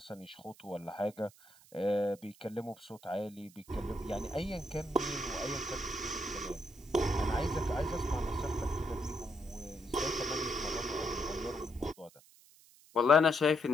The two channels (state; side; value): noise; right; hiss, 25 dB below the sound